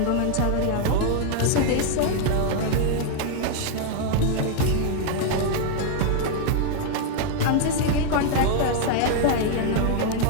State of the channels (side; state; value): both; different; correlation 0.00